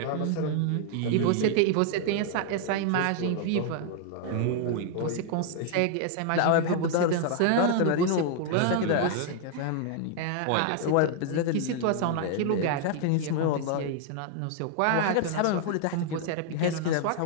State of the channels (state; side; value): different; both; correlation 0.00